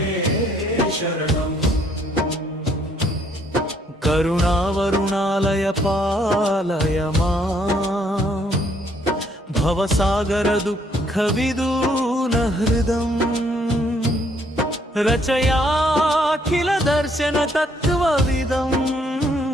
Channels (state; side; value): normal; both; correlation 0.67